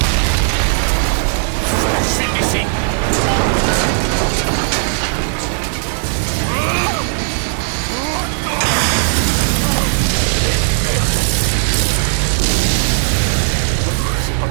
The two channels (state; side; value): silent; left; digital silence